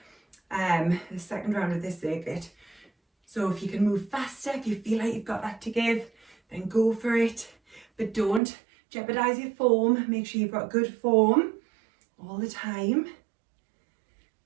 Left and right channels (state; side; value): drops out; left; at 8.4 s